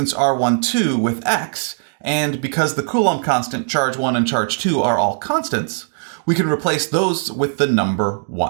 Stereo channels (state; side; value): silent; left; digital silence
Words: r1, 2 with x, and because the Coulomb constant, charge 1 and charge 2 are all constants, we can replace those with the number